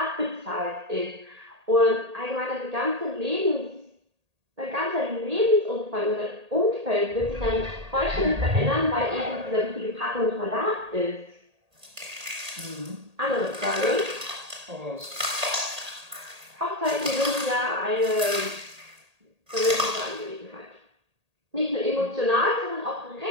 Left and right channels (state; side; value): late; left; 1.8 ms